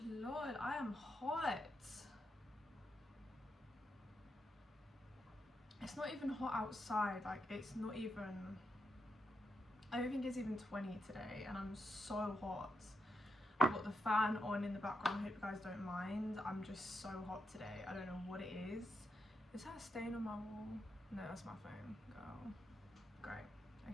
Lord, I am hot. It's not even hot outside, like it's not even, I don't think it's even 20 today, and I'm so hot. I've got the fan on in the background, I hope you guys don't mind. I'm just so hot today, I don't know what it is. Is that a stain on my wall? No, that's my phone, girl. Great,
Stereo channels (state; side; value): normal; both; correlation 0.83